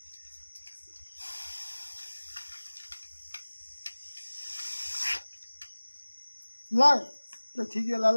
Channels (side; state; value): both; inverted; correlation -1.00